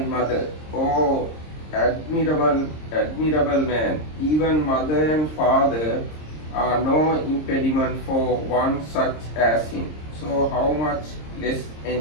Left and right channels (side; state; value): right; late; 26 ms